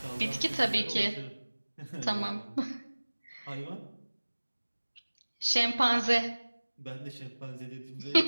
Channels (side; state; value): both; inverted; correlation -1.00